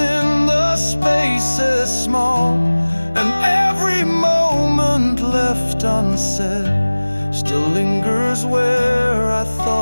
the spaces small. And every moment left unsaid still lingers where I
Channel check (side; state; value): both; inverted; correlation -1.00